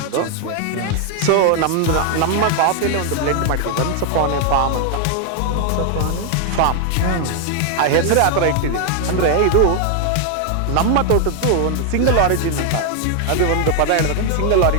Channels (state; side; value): different; both; correlation 0.00